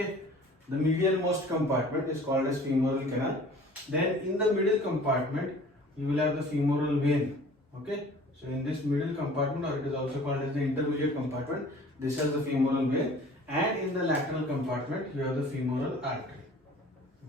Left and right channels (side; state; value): both; normal; correlation 0.48